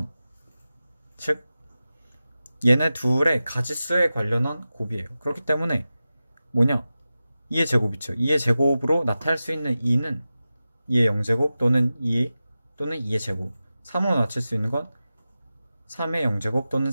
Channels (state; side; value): inverted; both; correlation -0.94